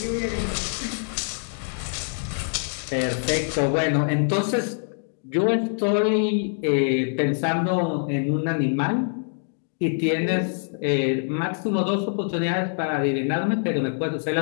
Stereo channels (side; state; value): right; silent; digital silence